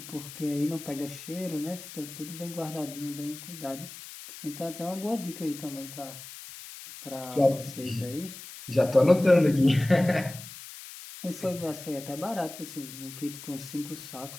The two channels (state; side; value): noise; left; hiss, 13 dB below the sound